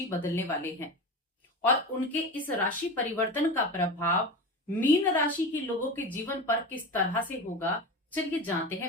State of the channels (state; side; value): normal; both; correlation 0.26